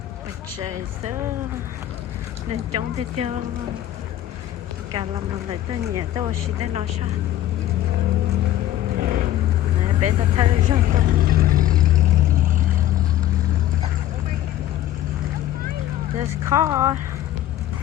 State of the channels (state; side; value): quieter; right; 13.0 dB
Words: Trời sớm nên chống thế cho cả làm lại cho nhẹ tôi chỉ để nói sao. Này bé ta thấy rồi tôi. This car.